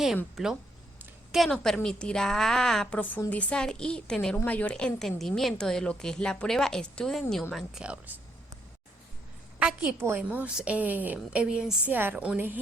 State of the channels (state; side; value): normal; both; correlation 0.74